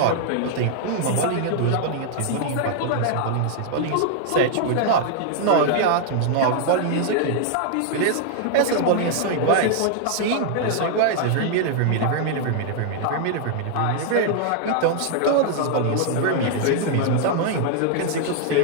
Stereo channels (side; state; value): both; different; correlation -0.01